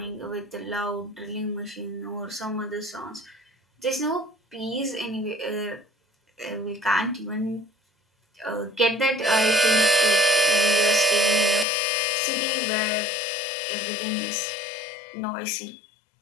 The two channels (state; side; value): drops out; right; at 11.7 s